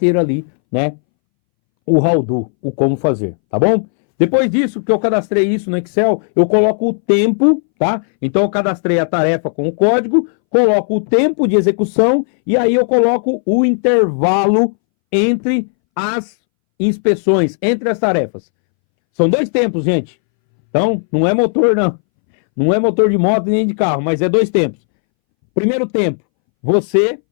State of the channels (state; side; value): silent; right; 66 dB below the other